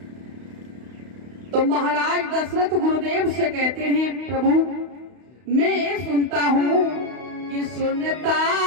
तो महाराज दशरथ गुरुदेव से कहते हैं, प्रभु मैं सुनता हूँ कि सुनता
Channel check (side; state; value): left; late; 32 ms